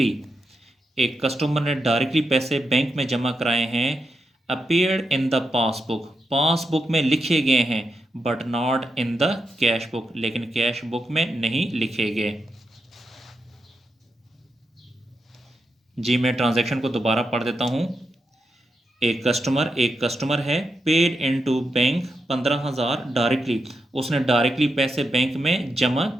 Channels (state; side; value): normal; both; correlation 0.85